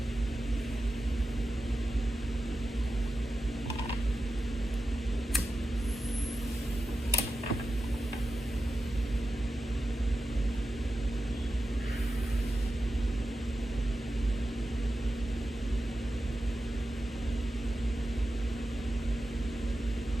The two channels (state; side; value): normal; both; correlation 0.92